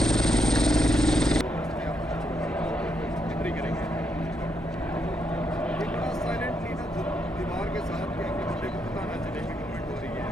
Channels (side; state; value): both; normal; correlation 0.79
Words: दीवार के साथ क्या बंदे को पता ना चले कि कमेंट हो रही है।